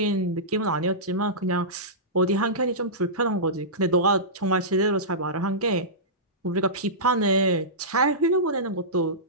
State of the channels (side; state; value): both; normal; correlation -0.17